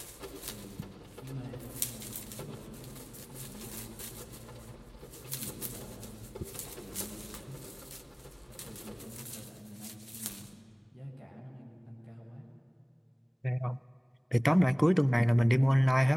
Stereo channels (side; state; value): both; identical; correlation 1.00